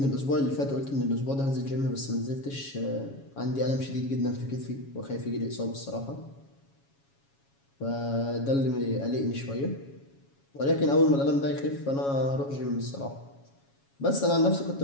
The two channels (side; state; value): right; late; 7.2 ms